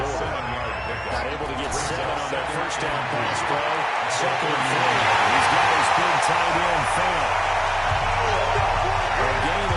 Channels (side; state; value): both; identical; correlation 1.00